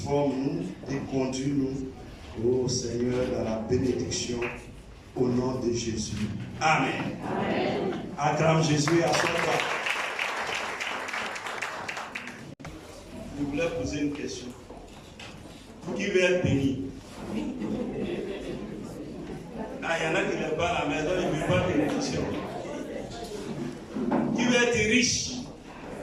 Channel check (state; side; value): identical; both; correlation 1.00